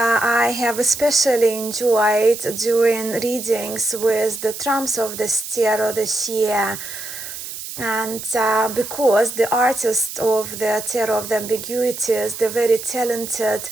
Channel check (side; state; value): right; noise; hiss, 9 dB below the sound